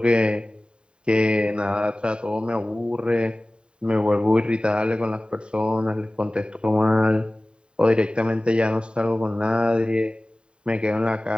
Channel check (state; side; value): late; left; 0.051 ms